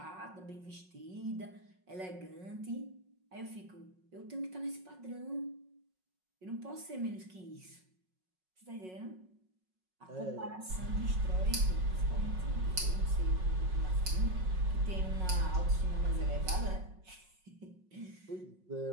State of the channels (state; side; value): late; left; 5.4 ms